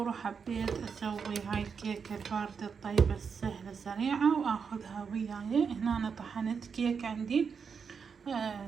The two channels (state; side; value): quieter; left; 6.1 dB